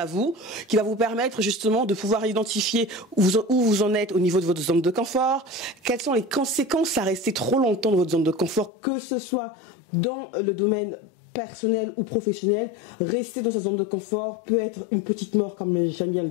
vous, qui va vous permettre justement de pouvoir identifier où vous en êtes au niveau de votre zone de confort, quelles sont les conséquences à rester trop longtemps dans votre zone de confort, que ce soit dans le domaine personnel ou professionnel. Rester dans sa zone de confort peut être une petite mort, comme j'aime bien le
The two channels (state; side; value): drops out; right; at 8.7 s